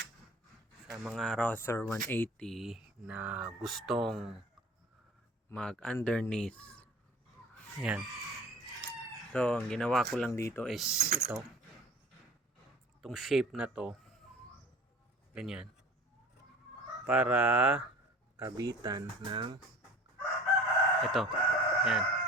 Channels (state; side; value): normal; both; correlation 0.42